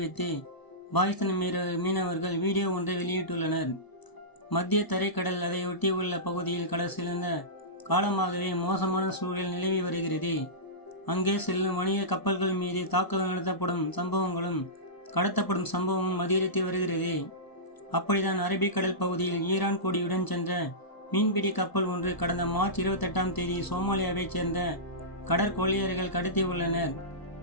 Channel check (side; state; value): right; late; 1.0 ms